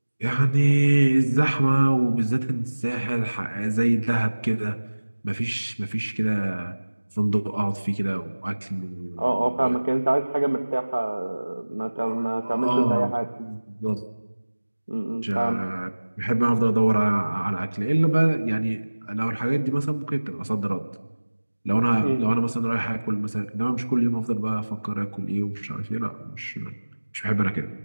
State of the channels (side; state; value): both; inverted; correlation -1.00